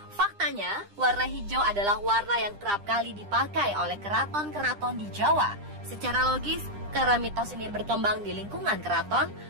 Faktanya, warna hijau adalah warna yang kerap kali dipakai oleh keraton-keraton di Jawa. Secara logis, karena mitos ini berkembang di lingkungan keraton,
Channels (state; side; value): late; left; 9.9 ms